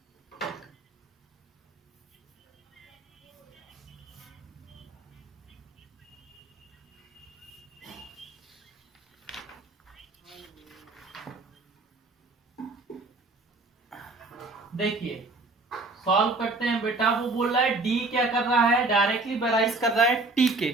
देखिए, सॉल्व करते हैं बेटा। वो बोल रहा है डी क्या कर रहा है, डायरेक्टली बैराइज कर रहा है टी के।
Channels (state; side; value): quieter; left; 3.3 dB